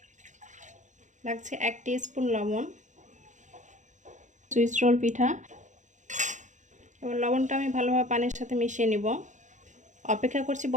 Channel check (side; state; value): left; late; 0.35 ms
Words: লাগছে 1 টিস্পুন লবণ। সুইস রোল পিঠা, এবার লবণটা আমি ভালোভাবে পানির সাথে মিশিয়ে নিব। অপেক্ষা করছি